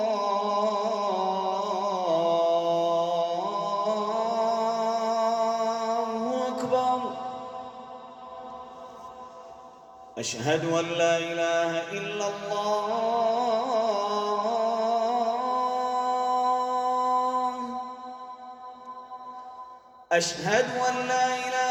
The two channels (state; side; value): identical; both; correlation 1.00